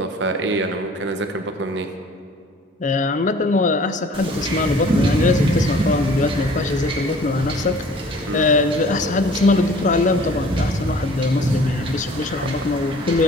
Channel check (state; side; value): normal; both; correlation 0.50